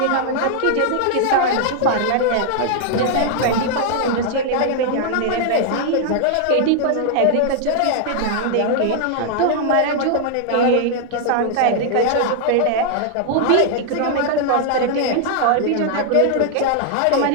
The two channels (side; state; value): both; different; correlation 0.00